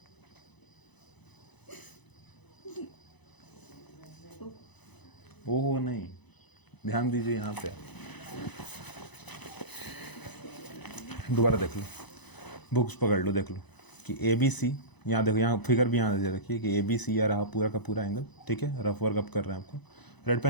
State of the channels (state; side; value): late; right; 1.0 ms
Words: ओहो नहीं, ध्यान दीजिए यहाँ पे, दोबारा देख लो, बुक्स पकड़ लो, देख लो कि ए बी सी, यहाँ देखो, यहाँ फिगर भी यहाँ दे रखिए कि ए बी सी या रहा पूरा का पूरा एंगल, ठीक है। रफ वर्क अप कर रहे हैं आपको, रेड